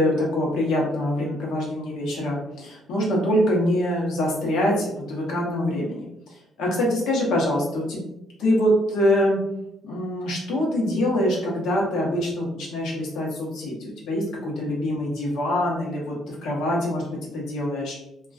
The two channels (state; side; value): normal; both; correlation 0.68